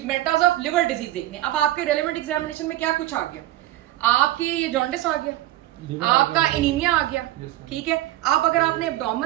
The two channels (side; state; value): left; quieter; 15.3 dB